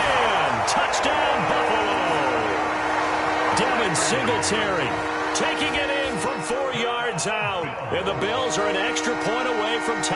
Touchdown, Buffalo. Devin Singletary taking it in from 4 yards out. And the Bills are an extra point away from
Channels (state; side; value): identical; both; correlation 1.00